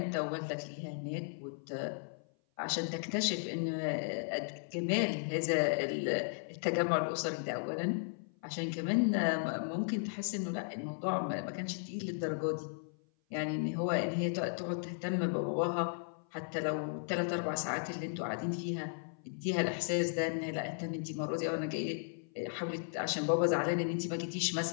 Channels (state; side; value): silent; right; 54 dB below the other